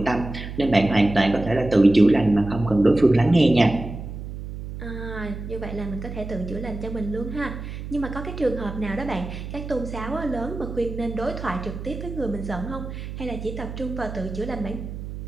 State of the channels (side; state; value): right; noise; hum, 9 dB below the sound